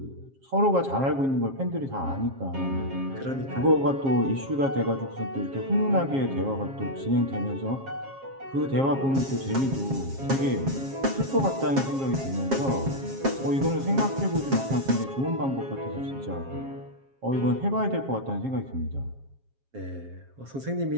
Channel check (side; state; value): left; late; 7.4 ms